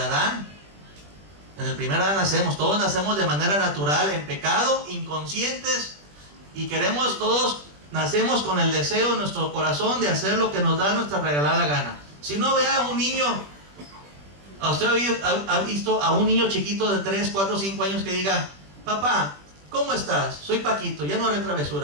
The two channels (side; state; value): left; late; 20 ms